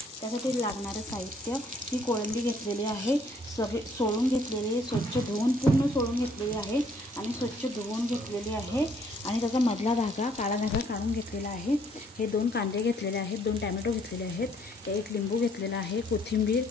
त्यासाठी लागणारं साहित्य, ही कोळंबी घेतलेली आहे, सगळे सोलून घेतलेली आहे, स्वच्छ धुवून पूर्ण सोलून घेतलेली आहे आणि स्वच्छ धुवून घेतलेली आहे आणि त्याचा मधला धागा, काळा धागा काढून घेतलेला आहे. हे 2 कांदे घेतलेले आहेत, 2 टॅमॅटो घेतलेले आहेत, 1 लिंबू घेतलेला आहे, कोथिंबीर,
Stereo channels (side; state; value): both; normal; correlation 0.64